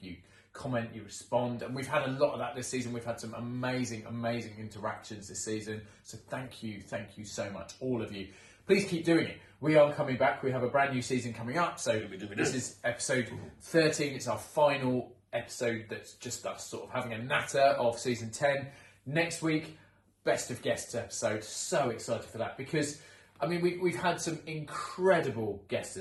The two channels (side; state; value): both; identical; correlation 1.00